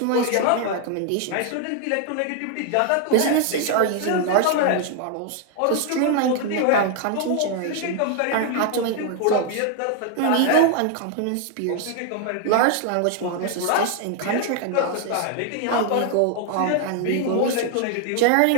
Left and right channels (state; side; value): different; both; correlation 0.00